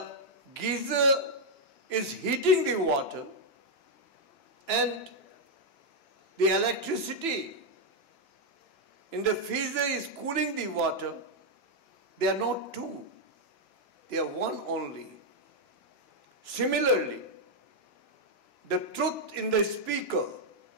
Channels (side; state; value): right; late; 2.9 ms